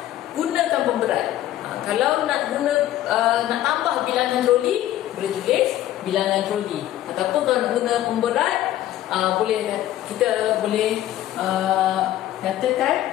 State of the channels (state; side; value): quieter; right; 13.3 dB